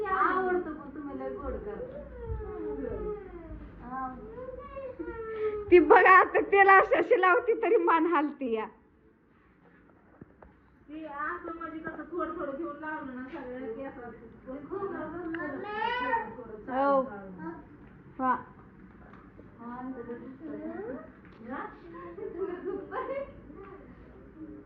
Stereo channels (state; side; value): identical; both; correlation 1.00